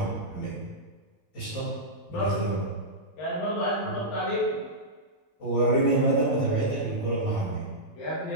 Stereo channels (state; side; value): late; right; 19 ms